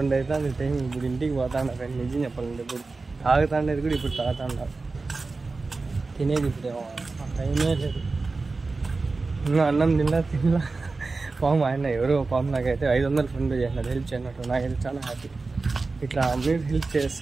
అవుతుంది టైం. ఇప్పుడు ఇంటికి పోతాను ఫ్రెండ్. నిజం చెప్పాలంటే ఇప్పుడు తాగుతాండేది కూడా ఇప్పుడు తాగుతాండ. తినేది ఇప్పుడు టైమే లేదు. ఇంకా అన్నం తినలా పాము ఆయన ఎవరో పాము నాకైతే 500 ఫోన్పే చేసినాడు హెల్ప్ చేయనట్టు. నాకైతే చాలా హ్యాపీ. ఇట్లా మీరు హెల్ప్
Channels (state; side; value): quieter; left; 3.8 dB